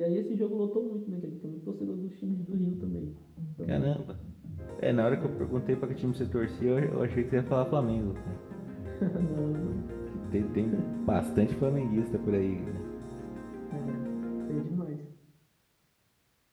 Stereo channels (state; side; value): identical; both; correlation 1.00